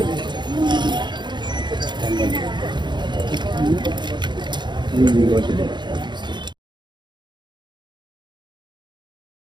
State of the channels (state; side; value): late; left; 0.22 ms